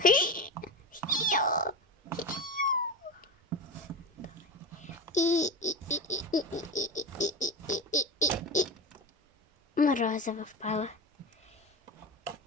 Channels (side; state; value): both; normal; correlation 0.24